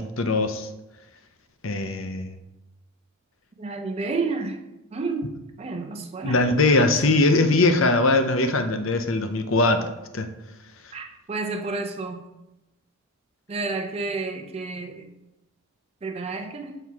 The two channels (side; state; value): both; normal; correlation 0.17